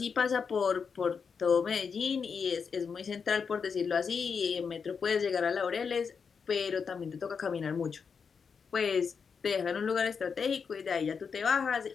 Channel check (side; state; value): right; quieter; 6.0 dB